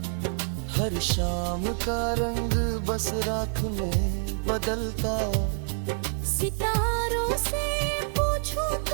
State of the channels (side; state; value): left; silent; 60 dB below the other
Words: हर शाम का रंग बस रात में बदलता। सितारों से पूछूं